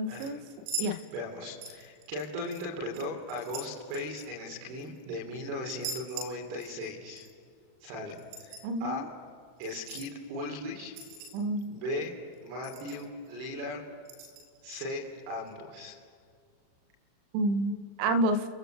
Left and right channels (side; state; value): left; late; 40 ms